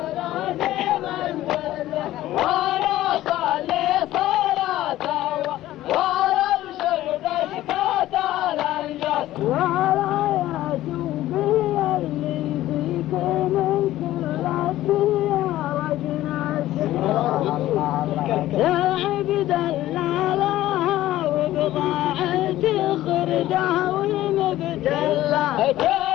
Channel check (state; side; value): quieter; right; 14.8 dB